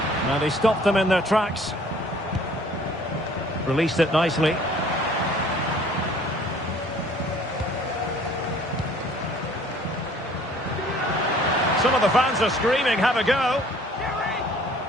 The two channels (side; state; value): both; normal; correlation 0.54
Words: Now they stopped them in their tracks. Released it nicely. Some of the fans are screaming, have a go.